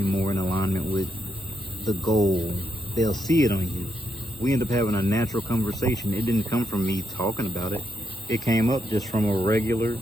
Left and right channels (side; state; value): both; normal; correlation 0.82